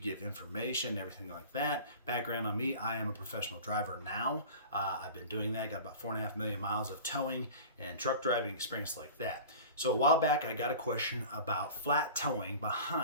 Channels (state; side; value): inverted; both; correlation -0.38